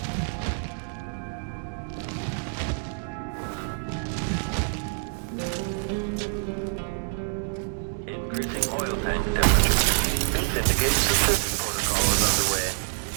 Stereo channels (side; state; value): left; silent; 60 dB below the other